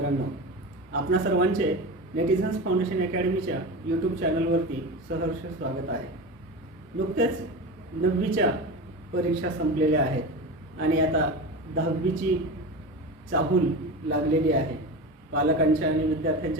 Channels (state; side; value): normal; both; correlation 0.26